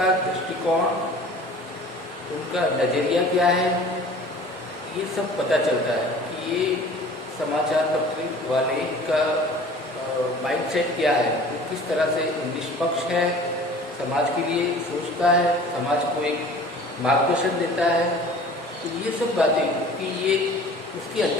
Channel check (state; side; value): normal; both; correlation 0.45